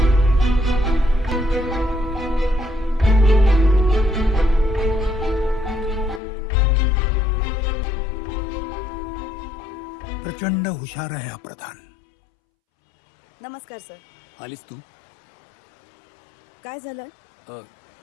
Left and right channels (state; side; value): drops out; right; at 6.2 s